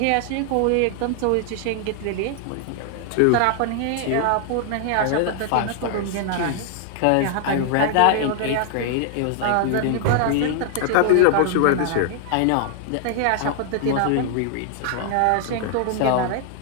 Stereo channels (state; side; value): different; both; correlation 0.00